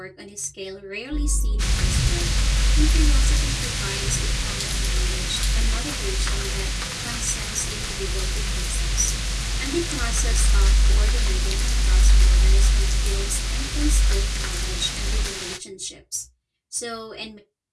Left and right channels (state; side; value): identical; both; correlation 1.00